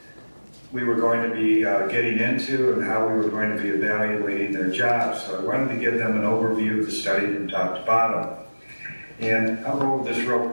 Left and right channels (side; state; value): both; inverted; correlation -1.00